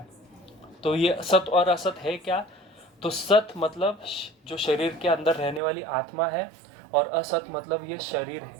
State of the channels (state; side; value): drops out; left; at 5.6 s